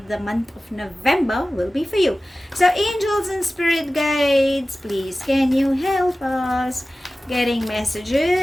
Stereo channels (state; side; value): normal; both; correlation 0.96